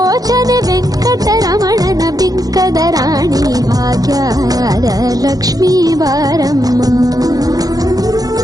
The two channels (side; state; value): left; late; 0.18 ms